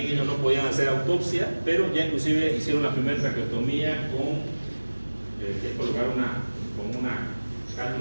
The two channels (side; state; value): both; inverted; correlation -1.00